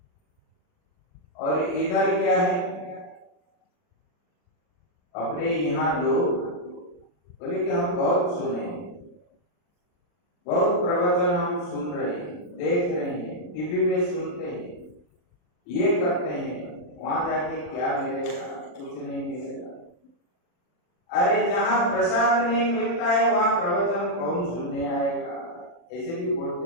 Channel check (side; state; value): right; late; 40 ms